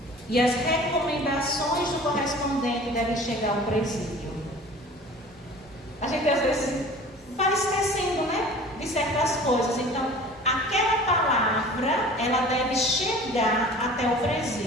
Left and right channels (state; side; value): normal; both; correlation 0.43